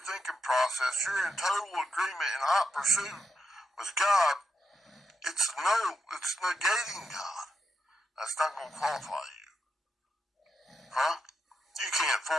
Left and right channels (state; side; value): normal; both; correlation 0.85